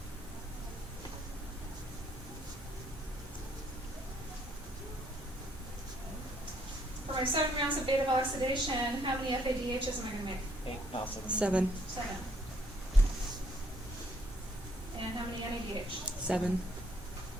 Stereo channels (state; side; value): normal; both; correlation 0.68